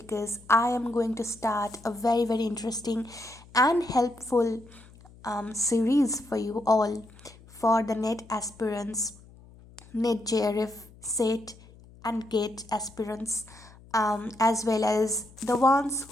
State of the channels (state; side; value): noise; left; hum, 23 dB below the sound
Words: I am going to start a very interesting and helpful series for you all for the NET aspirants, NET JRF, SET, and GATE aspirants, as well as the ones